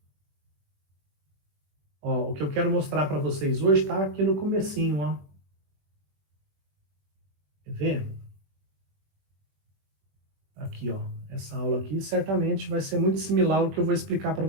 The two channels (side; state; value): left; late; 21 ms